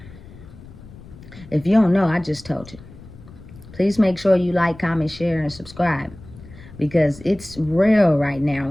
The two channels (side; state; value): left; noise; rumble, 19 dB below the sound